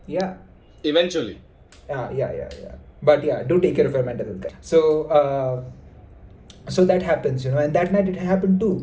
Yeah. Eventually. Yeah. But yeah, do take care of your mental health, guys. So that happens, and that night it happened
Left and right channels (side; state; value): both; identical; correlation 1.00